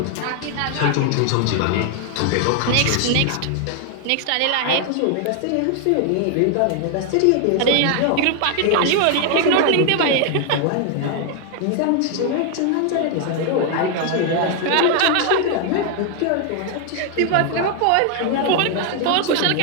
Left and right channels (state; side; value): different; both; correlation 0.00